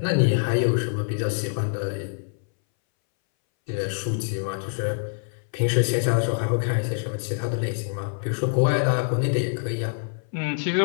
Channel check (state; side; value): silent; right; 62 dB below the other